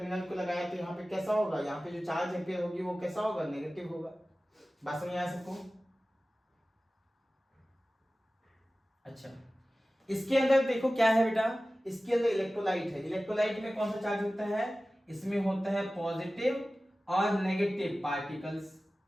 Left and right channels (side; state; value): both; normal; correlation 0.96